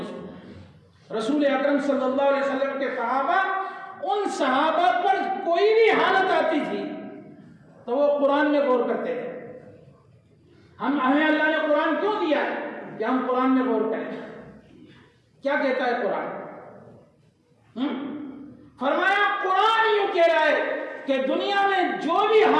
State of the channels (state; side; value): identical; both; correlation 1.00